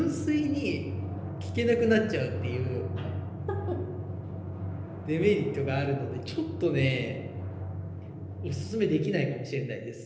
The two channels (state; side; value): identical; both; correlation 1.00